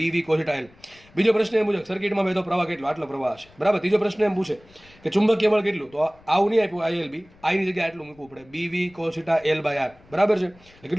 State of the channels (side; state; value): left; noise; rumble, 27 dB below the sound